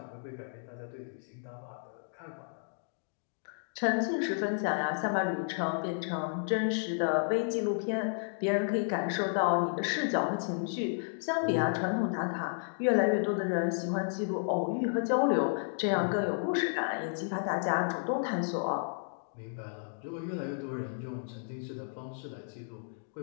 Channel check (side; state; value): right; silent; digital silence